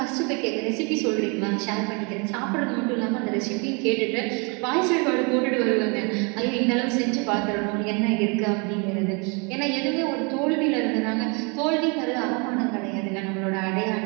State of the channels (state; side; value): quieter; left; 32.3 dB